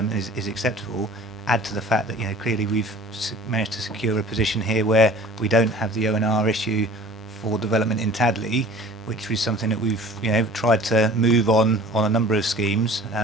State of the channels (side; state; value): both; normal; correlation 0.45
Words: is acceptable. Add to the fact that clearly we've managed to secure a position here where we don't have the ONR issue for development in Tadley, which was something that we've tried to move on a number of schemes,